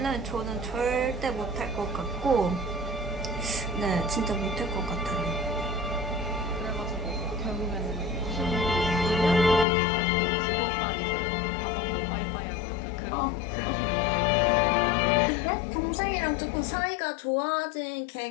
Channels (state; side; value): drops out; right; at 9.7 s